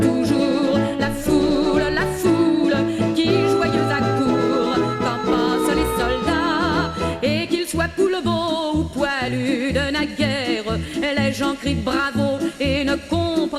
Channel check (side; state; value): both; identical; correlation 1.00